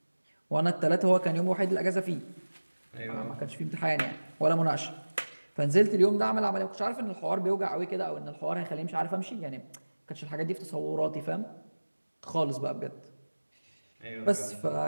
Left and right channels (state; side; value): inverted; both; correlation -1.00